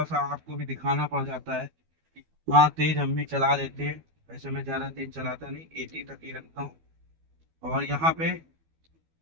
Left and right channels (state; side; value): late; left; 12 ms